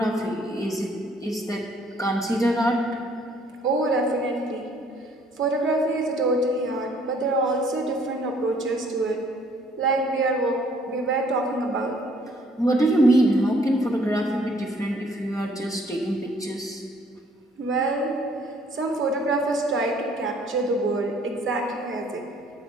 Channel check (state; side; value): normal; both; correlation 0.61